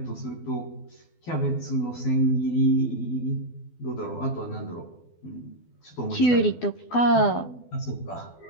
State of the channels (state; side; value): late; right; 12 ms